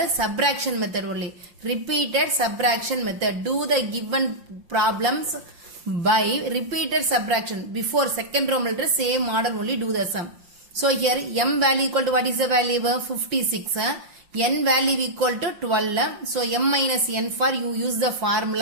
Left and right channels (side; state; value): left; late; 5.7 ms